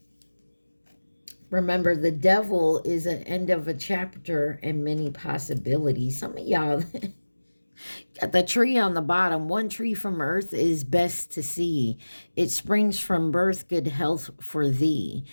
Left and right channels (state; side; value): inverted; both; correlation -1.00